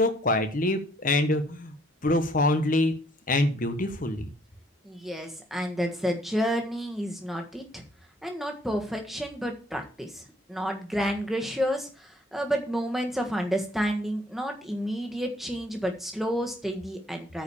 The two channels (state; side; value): normal; both; correlation 0.63